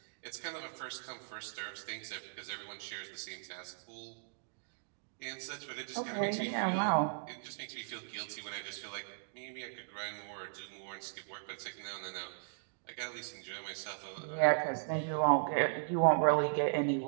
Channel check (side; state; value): left; silent; digital silence